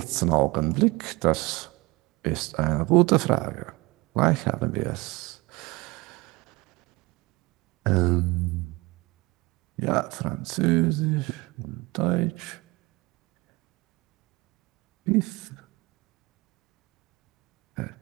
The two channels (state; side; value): quieter; left; 23.0 dB